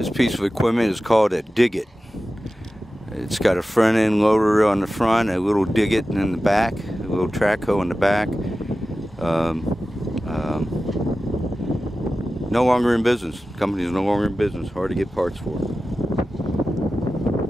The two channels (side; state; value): both; normal; correlation 0.94